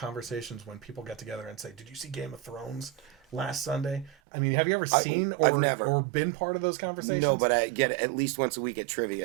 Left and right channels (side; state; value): left; drops out; at 4.2 s